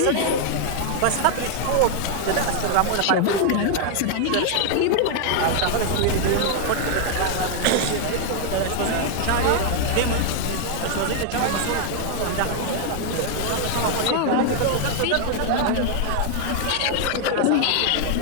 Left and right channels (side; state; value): both; different; correlation 0.00